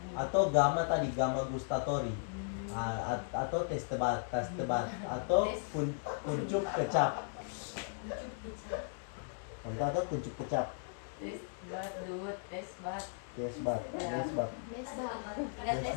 atau gamma gustatori, atau tes tebat atau kuncup kecap. Atau kuncup kecap. Desbat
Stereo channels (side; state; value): right; silent; digital silence